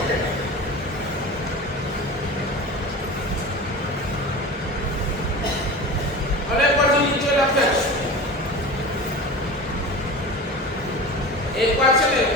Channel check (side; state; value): both; normal; correlation 0.32